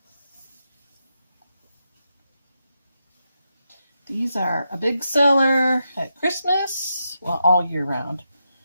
These are a big seller at Christmas, well, all year round.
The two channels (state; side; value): inverted; both; correlation -0.85